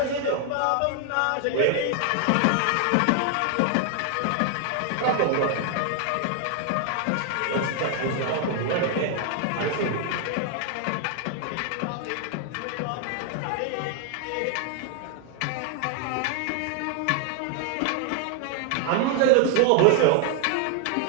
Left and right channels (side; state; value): both; different; correlation 0.00